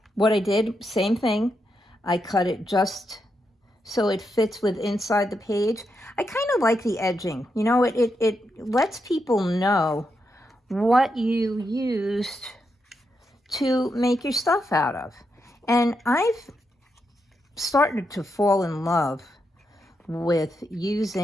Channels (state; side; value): normal; both; correlation 0.83